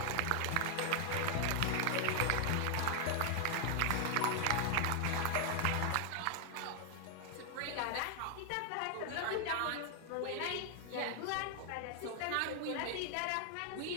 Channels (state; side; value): different; both; correlation 0.00